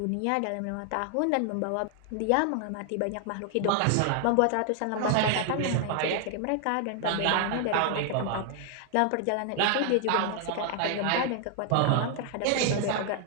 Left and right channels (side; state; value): both; different; correlation 0.00